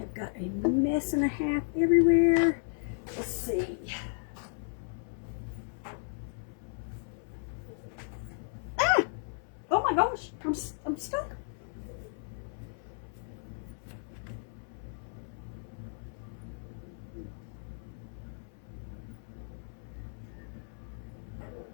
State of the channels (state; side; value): silent; right; 55 dB below the other